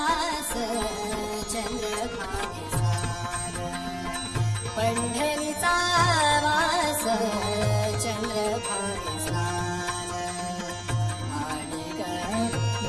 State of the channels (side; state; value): both; identical; correlation 1.00